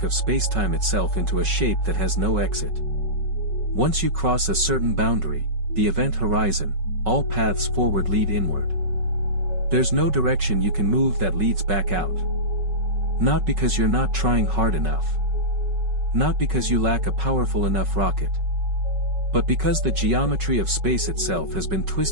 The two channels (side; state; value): left; late; 5.4 ms